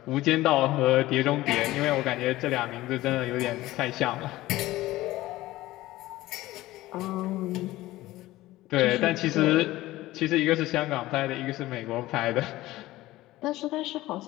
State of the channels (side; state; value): right; quieter; 17.1 dB